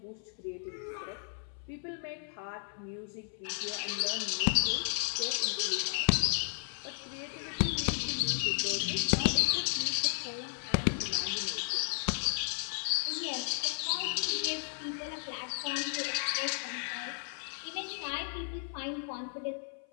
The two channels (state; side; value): silent; right; 55 dB below the other